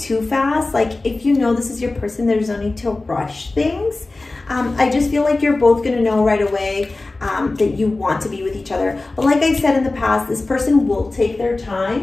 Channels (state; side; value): quieter; right; 3.2 dB